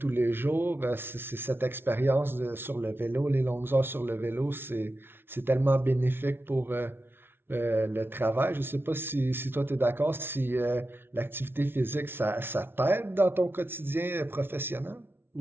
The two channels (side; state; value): left; late; 0.11 ms